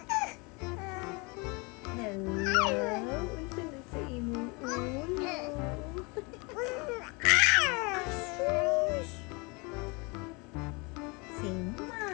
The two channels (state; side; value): quieter; right; 28.9 dB